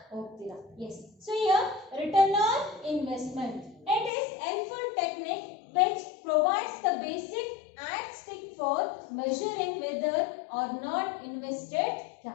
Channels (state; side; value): drops out; right; at 4.1 s